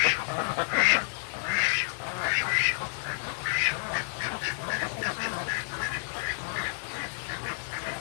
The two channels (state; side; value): silent; right; digital silence